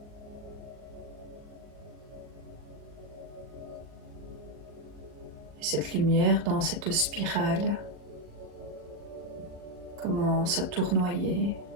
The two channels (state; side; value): late; left; 39 ms